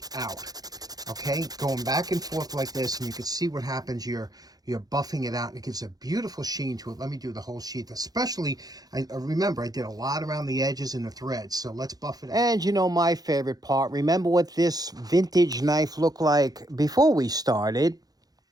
out. Okay, going back and forth like this, and you can see what happens. You're buffing it out, and it gives a beautiful sheen to it. Let me do the whole sheath. Especially, remember, I did a lot around the edges and the threads, so let's buff it out. And you know my favorite part, remember what this vintage knife looked like before we started?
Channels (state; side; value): late; left; 0.19 ms